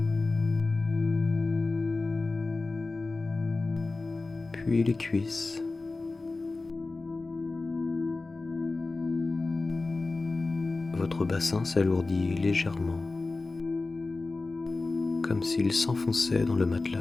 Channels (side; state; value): right; quieter; 3.5 dB